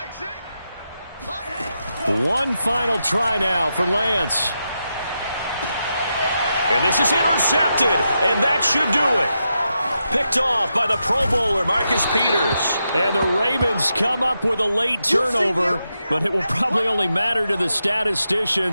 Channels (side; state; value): both; inverted; correlation -0.86